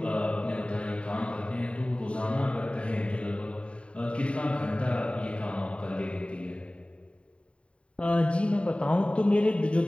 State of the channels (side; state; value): right; late; 0.060 ms